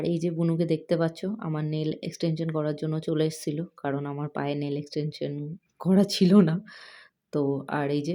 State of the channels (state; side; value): identical; both; correlation 1.00